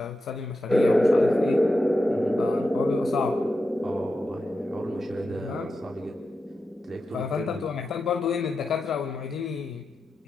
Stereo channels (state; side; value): normal; both; correlation 0.90